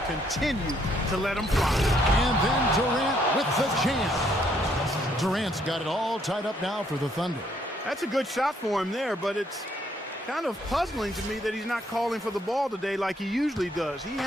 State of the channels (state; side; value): normal; both; correlation 0.69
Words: continue to let him fly. And then Durant with the jam. Durant's got it all tied up now for the Thunder. That's a good shot for him there, but it's kind of puzzling to me that he's not calling for the ball today like he usually does. He